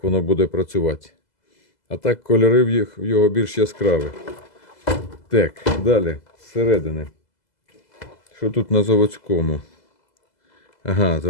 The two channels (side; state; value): right; late; 2.0 ms